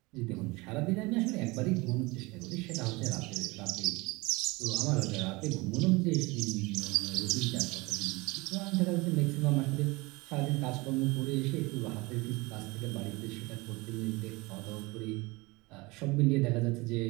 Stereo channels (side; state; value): left; quieter; 24.0 dB